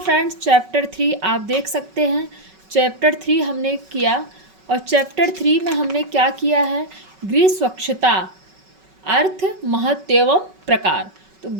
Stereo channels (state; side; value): late; left; 5.3 ms